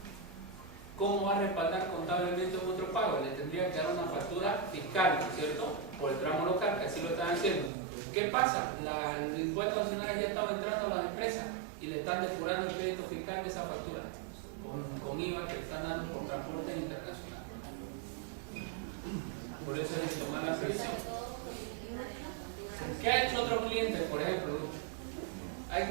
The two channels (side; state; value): left; drops out; at 7.7 s